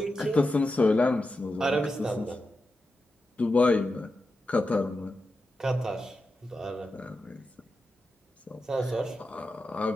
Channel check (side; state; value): both; normal; correlation 0.90